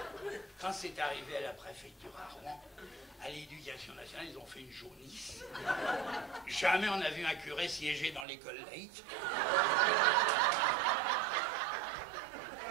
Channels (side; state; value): left; drops out; at 8.2 s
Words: Quand c'est arrivé à la préfecture à Rouen, à l'éducation nationale, ils ont fait une jaunisse. Jamais on a vu un curé siéger dans l'école laïque.